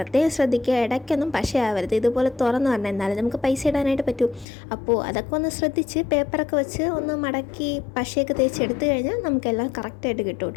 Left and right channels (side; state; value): right; drops out; at 4.5 s